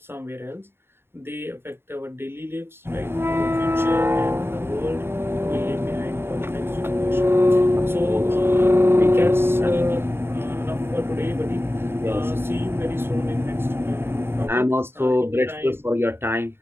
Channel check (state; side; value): late; left; 0.11 ms